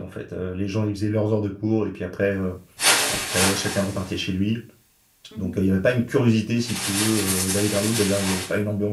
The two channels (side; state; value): both; identical; correlation 1.00